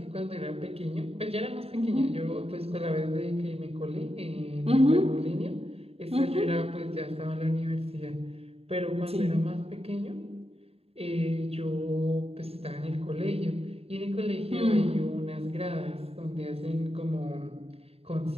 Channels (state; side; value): late; left; 0.29 ms